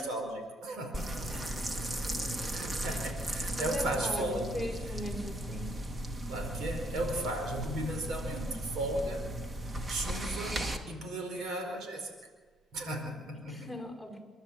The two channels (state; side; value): normal; both; correlation 0.67